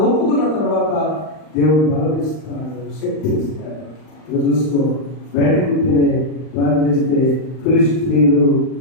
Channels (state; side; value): late; right; 39 ms